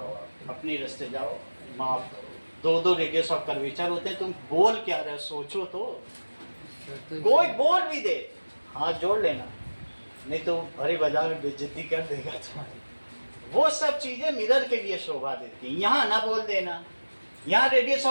आप अपनी रास्ते जाओ, माफ करो, 2 रेडियस ऑफ कर्वेचर होते हैं। तुम बोल क्या रहे हो, सोचो तो। कोई बोल भी दे हाथ जोड़ लेना, नहीं तो भरी बाजार में बेइज्जती कर देगा तुम्हारी। वो सब चीजें मिरर के लिए शोभा देती हैं, यहाँ ना बोल देना। यहाँ रेडियस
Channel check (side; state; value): both; inverted; correlation -1.00